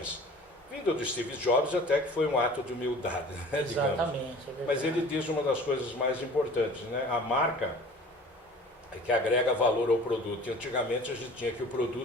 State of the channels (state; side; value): normal; both; correlation 0.45